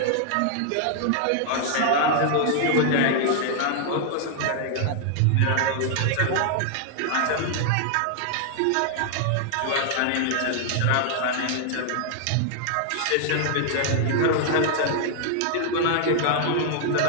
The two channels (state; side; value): different; both; correlation 0.00